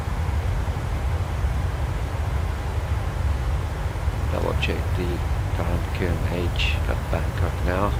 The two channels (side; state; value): both; identical; correlation 1.00